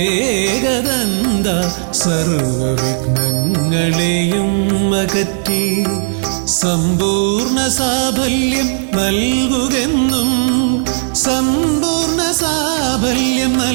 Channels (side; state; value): left; silent; digital silence